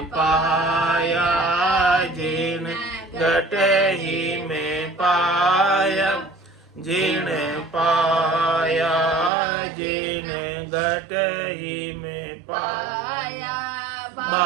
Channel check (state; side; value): drops out; left; at 9.3 s